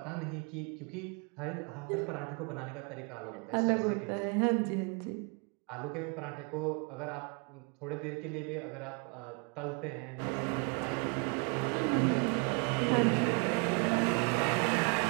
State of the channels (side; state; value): left; quieter; 34.0 dB